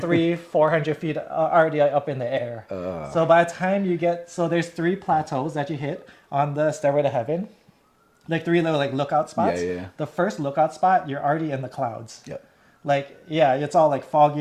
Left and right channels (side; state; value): both; identical; correlation 1.00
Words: feet already up in the air. So by the time you get, so there's 3 plateaus that you hit on the Stairway to Heaven, like 3 little like lookout spots. Yeah. The first lookout spot, you're already in the clouds. Yep. Like yeah, it's all like